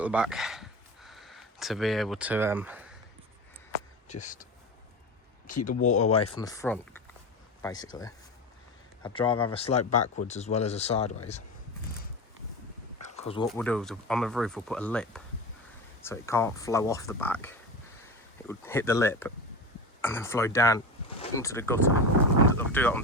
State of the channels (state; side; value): normal; both; correlation 0.25